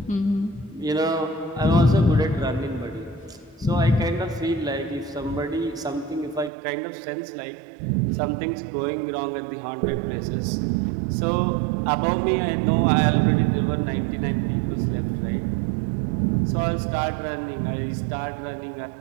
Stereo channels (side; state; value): left; drops out; at 6.5 s